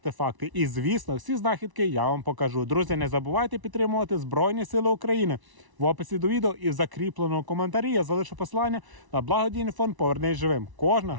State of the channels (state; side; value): late; left; 1.0 ms